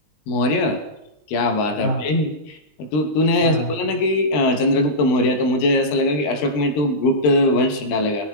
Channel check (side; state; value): right; late; 20 ms